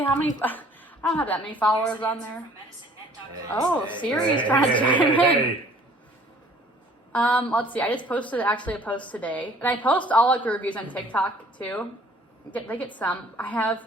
how many. I don't have that many followers on there. Oh, Siri's trying to chime in. Hey. Let's see. I just posted actually a post today, and I post all like the reviews on TikTok too. They get some. I have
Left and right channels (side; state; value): both; normal; correlation 0.55